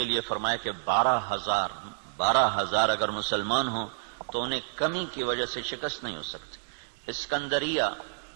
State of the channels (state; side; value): silent; left; digital silence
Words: لیے فرمایا کہ 12,000 اگر مسلمان ہوں تو انہیں کمی کی وجہ سے شکست نہیں ہو سکتی. اسکندریہ